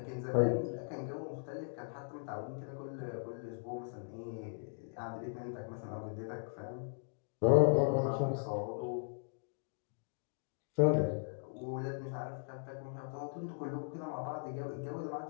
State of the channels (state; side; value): silent; right; digital silence